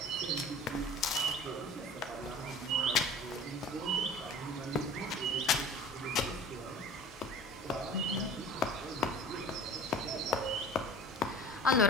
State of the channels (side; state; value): both; normal; correlation 0.41